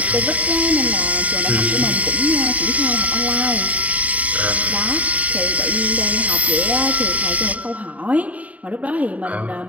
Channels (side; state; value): left; late; 0.070 ms